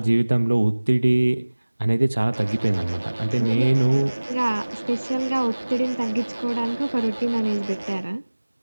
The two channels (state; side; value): inverted; both; correlation -1.00